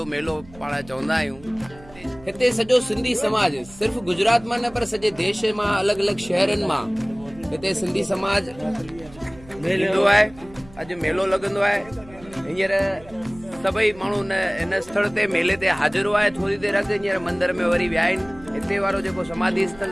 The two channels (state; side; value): noise; right; hum, 22 dB below the sound